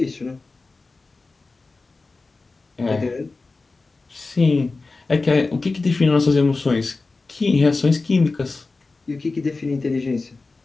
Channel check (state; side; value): quieter; right; 3.7 dB